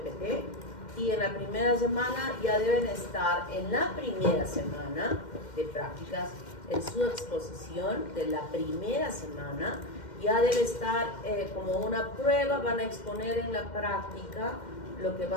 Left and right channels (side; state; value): right; late; 2.1 ms